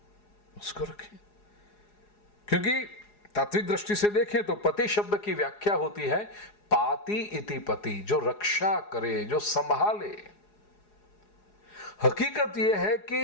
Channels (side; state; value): right; late; 4.8 ms